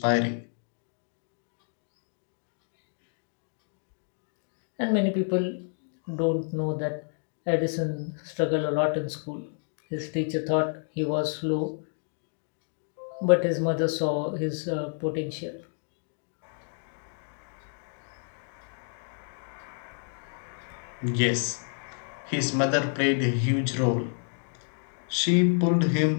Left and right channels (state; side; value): silent; right; 58 dB below the other